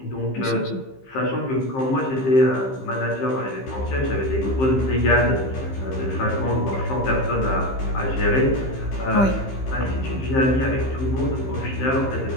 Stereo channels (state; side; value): late; right; 15 ms